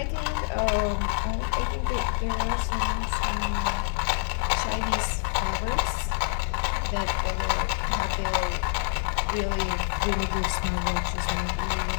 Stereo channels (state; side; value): silent; right; digital silence